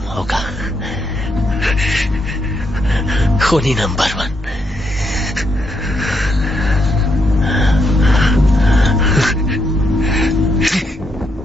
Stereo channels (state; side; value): normal; both; correlation 0.78